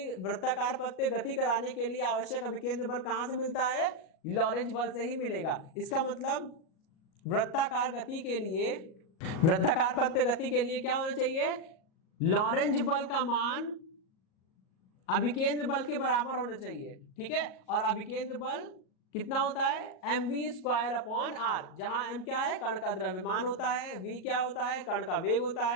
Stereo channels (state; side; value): late; right; 38 ms